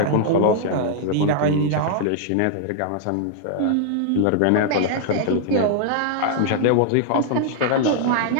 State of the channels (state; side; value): different; both; correlation -0.01